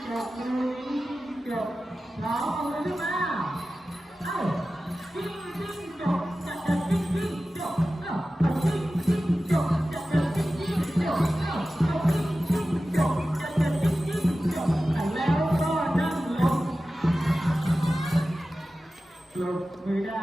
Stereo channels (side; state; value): both; normal; correlation 0.95